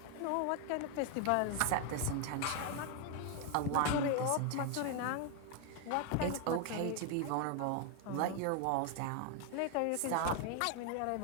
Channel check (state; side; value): different; both; correlation 0.00